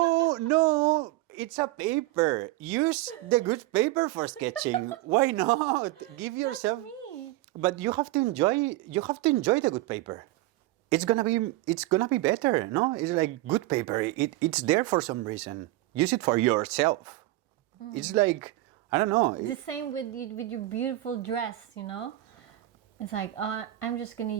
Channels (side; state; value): left; quieter; 17.6 dB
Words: it's a paper. Use the good paper for sketching. Why not? Give yourself. That's me. But you have to enjoy the good paper. It's gonna be better. No, it's like good paper. It's there for some reason. Use it for yourself. It's like, I don't know. The same with your beautiful dress, you know? It's like, I'm just going to